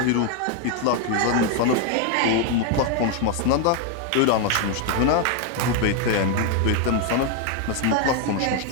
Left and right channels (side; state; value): both; different; correlation 0.01